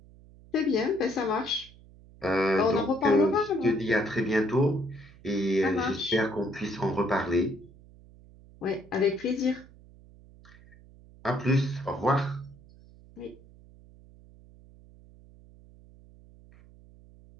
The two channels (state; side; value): noise; right; hum, 23 dB below the sound